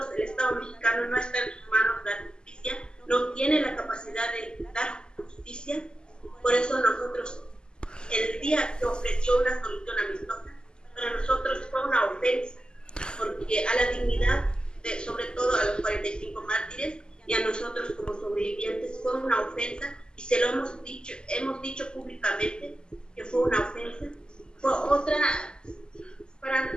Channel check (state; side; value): late; right; 0.047 ms